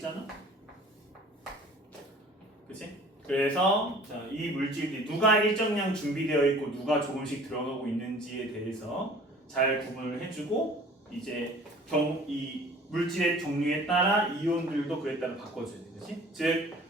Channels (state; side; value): normal; both; correlation 0.48